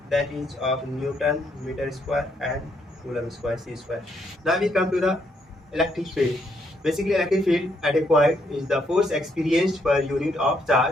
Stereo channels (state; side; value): normal; both; correlation 0.74